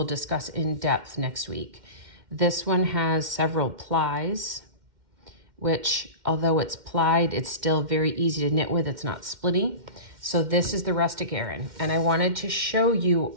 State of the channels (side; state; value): left; late; 2.1 ms